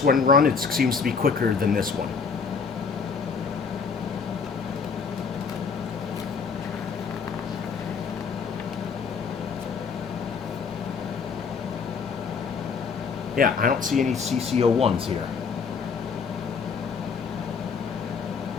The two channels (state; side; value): quieter; right; 5.6 dB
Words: one run, it seems to be quicker than this one. Yeah, I don't see any CCO ones here.